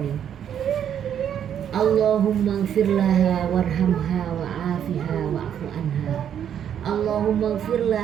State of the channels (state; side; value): quieter; left; 9.2 dB